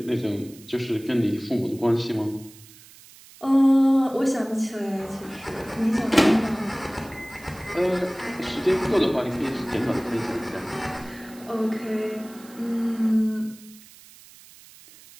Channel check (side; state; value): right; noise; hiss, 22 dB below the sound